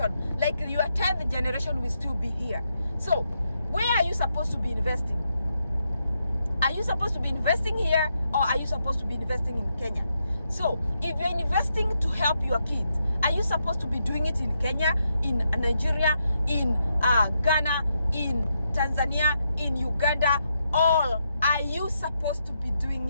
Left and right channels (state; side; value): inverted; both; correlation -0.81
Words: like your 10th generation, will still be here. So where are you supposed to be investing? Are you supposed to be investing here, or are you supposed to be investing in Kenya? So if you're investing to help your kids, are you supposed to be doing it in Kenya, in Nigeria, in Ghana, in Tanzania, in Uganda, or are you supposed to be